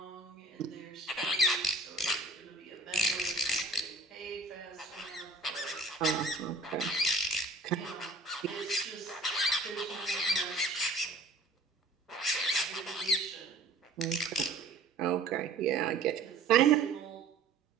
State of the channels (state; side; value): quieter; left; 3.2 dB